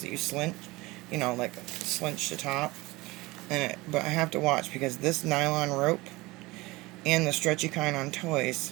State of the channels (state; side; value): quieter; left; 21.6 dB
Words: that you slinch, like slinch the top. But I have to watch, because this nylon rope and the stretchy kind on